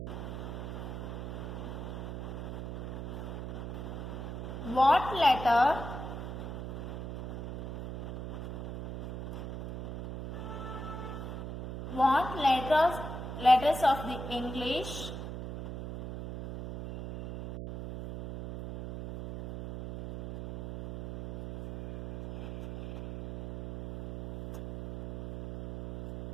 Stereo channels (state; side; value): noise; right; hum, 7 dB below the sound